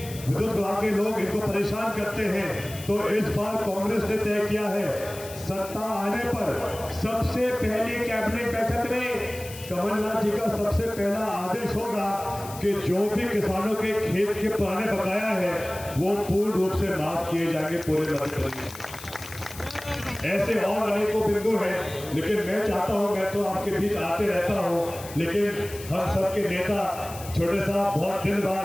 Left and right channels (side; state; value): left; noise; hiss, 15 dB below the sound